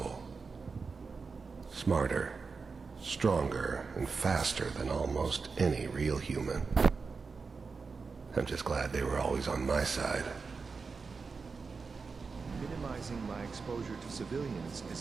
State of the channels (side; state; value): left; quieter; 4.7 dB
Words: Smarter, stronger, and faster than almost any real human. I'm just glad they were always on my side. Minimizing my exposure to civilians is